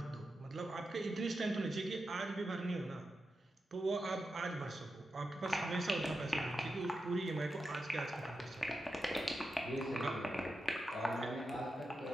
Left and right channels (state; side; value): normal; both; correlation 0.89